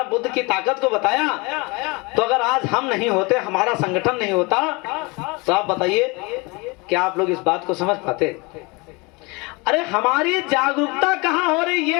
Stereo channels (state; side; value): quieter; right; 26.9 dB